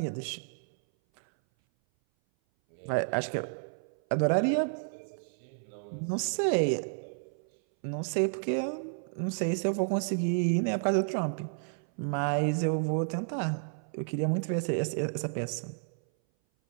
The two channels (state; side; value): silent; left; 57 dB below the other